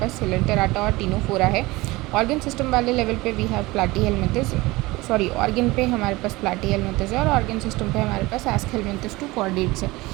सिलेंटेराटा और टीनोफोरा है। ऑर्गन सिस्टम वाले लेवल पे वी हैव प्लाटीहेलमिंथस, ऑर्गन पे हमारे पास प्लाटीहेलमिंथस है और ऑर्गन सिस्टम पे हमारे पास एस्केलमिंथस टू कॉर्डेट्स है।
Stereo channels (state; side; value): quieter; left; 21.0 dB